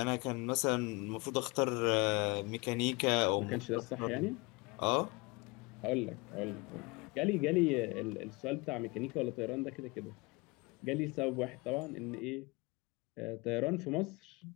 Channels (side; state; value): right; quieter; 26.4 dB